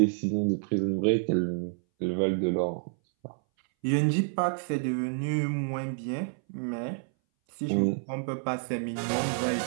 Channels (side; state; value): left; silent; 59 dB below the other